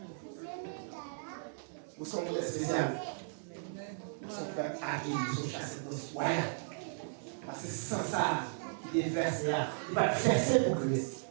Nous sommes des spéciales. Nous sommes fait hacker, nous sommes chassés de soins. Parce que sans ça, il est versé. Il va verser pour Christ.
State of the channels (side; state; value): left; silent; digital silence